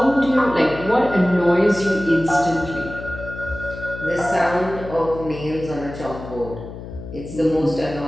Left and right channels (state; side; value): noise; left; hum, 12 dB below the sound